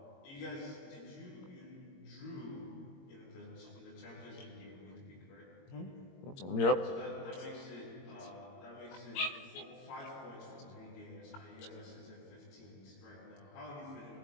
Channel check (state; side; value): late; right; 22 ms